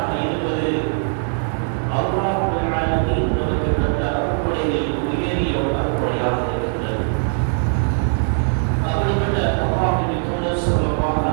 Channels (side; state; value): left; silent; digital silence